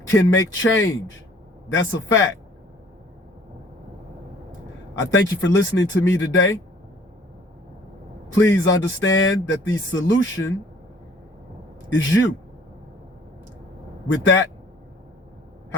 can make change. That's a fact. I thank you for listening to me today. Please understand that the solution is you. With that,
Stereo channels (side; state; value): both; normal; correlation 0.55